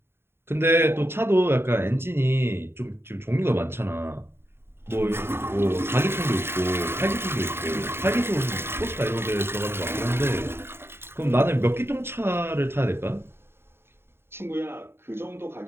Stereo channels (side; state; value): left; late; 0.11 ms